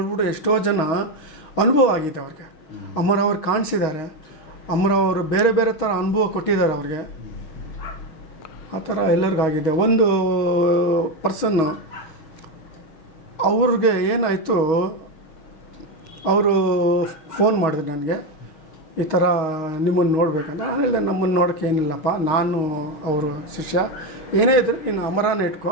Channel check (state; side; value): late; right; 6.4 ms